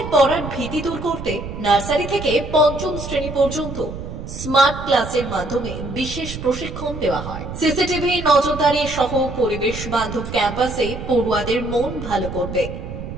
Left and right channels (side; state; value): right; noise; rumble, 9 dB below the sound